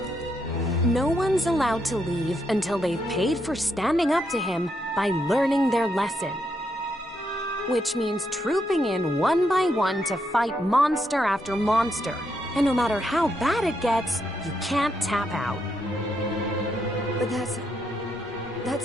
No one's allowed to leave until they've paid for standing up to him by learning their lesson. Which means trooping in one by one to fight monster after monster. And no matter how bad it gets, you can't tap out. But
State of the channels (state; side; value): normal; both; correlation 0.79